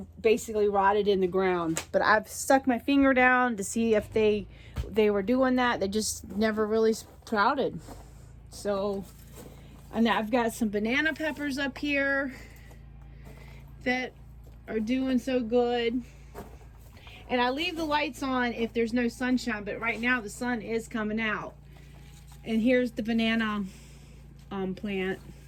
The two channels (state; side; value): identical; both; correlation 1.00